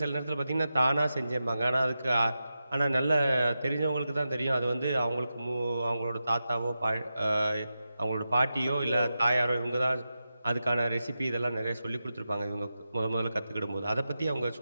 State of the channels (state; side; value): inverted; both; correlation -0.91